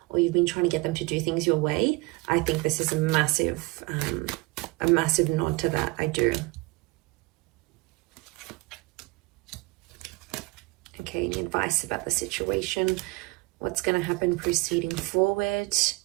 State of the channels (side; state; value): left; quieter; 24.6 dB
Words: or you've been trying to get them to do things your way. I think this is a massive nod to that. I do. Okay, any advice about the situation? What's going to happen proceeding forward?